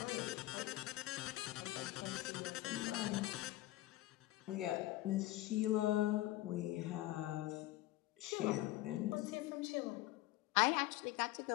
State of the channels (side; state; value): right; quieter; 16.6 dB